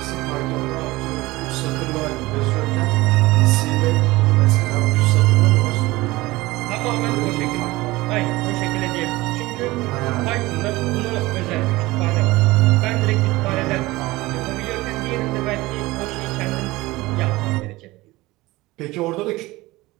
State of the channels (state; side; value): quieter; left; 20.0 dB